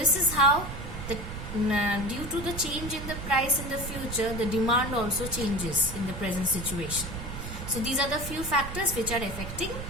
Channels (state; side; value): noise; right; rumble, 8 dB below the sound